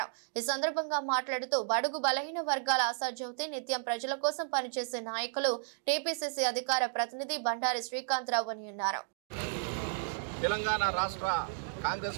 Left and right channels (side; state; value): left; silent; digital silence